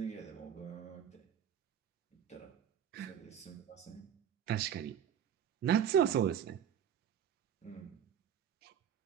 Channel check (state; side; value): quieter; left; 9.0 dB